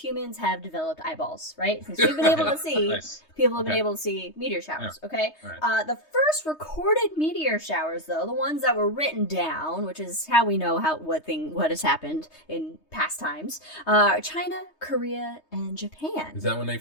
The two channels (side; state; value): right; late; 3.2 ms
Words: have developed eyeballs, right? Since we've been able to see, Nice. people have been able to see meteor showers, okay? Right. The first recorded meteor showers, though, the ones that were written down, which is how we know what has happened in past times, China, Korea, and Japan. Is that when they